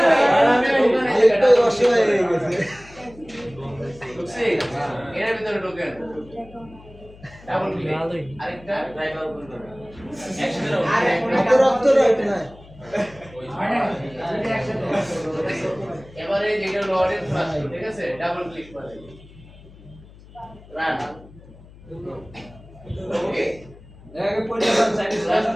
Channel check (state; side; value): noise; left; hum, 21 dB below the sound